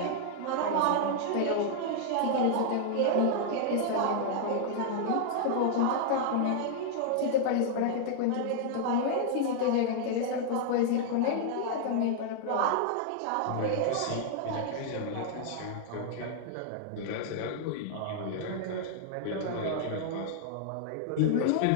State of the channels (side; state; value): both; different; correlation -0.01